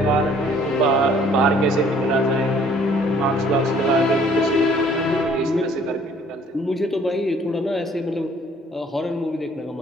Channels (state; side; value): normal; both; correlation 0.58